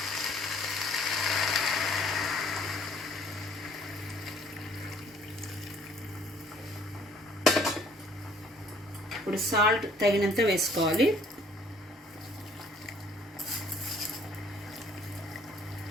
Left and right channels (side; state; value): both; normal; correlation 0.59